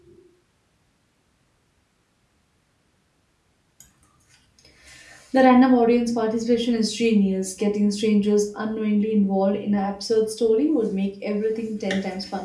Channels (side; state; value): both; identical; correlation 1.00